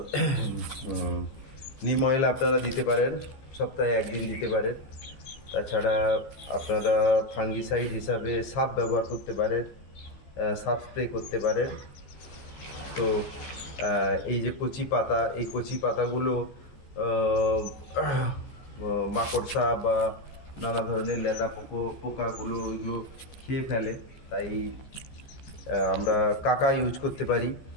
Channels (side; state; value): right; late; 15 ms